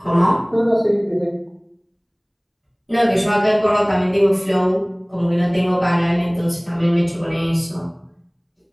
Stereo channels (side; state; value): both; identical; correlation 1.00